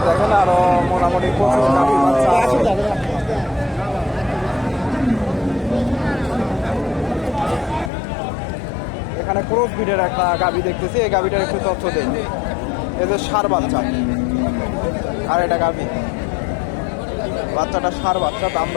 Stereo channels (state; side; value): drops out; right; at 7.9 s